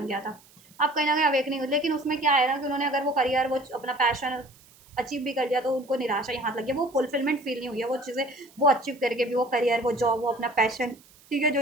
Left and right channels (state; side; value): noise; right; hiss, 27 dB below the sound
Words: गया था। अब कहीं ना कहीं अवेकनिंग हुई, लेकिन उसमें क्या है ना कि उन्होंने अगर वो करियर वो अपना पैशन अचीव भी कर लिया तो उनको निराशा ही हाथ लग गया, वो फुलफिलमेंट फील नहीं हुई है, वो चीज़ें वो अचीव करके भी, वो करियर, वो जॉब, वो अपना पैशन, ठीक है, जो